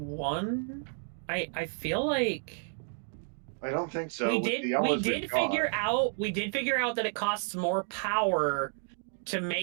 I feel like I don't think so. we with did the hours we we've did got. figure out that it costs more power to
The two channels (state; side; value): silent; left; 57 dB below the other